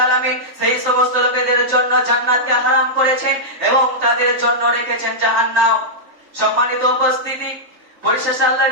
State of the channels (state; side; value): late; left; 3.5 ms